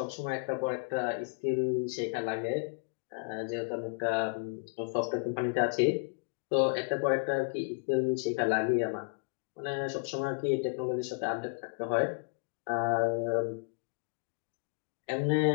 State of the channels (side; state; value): right; silent; digital silence